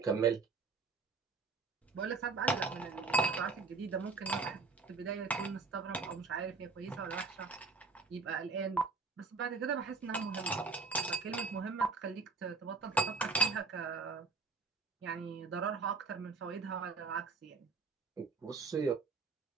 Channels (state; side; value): quieter; left; 4.3 dB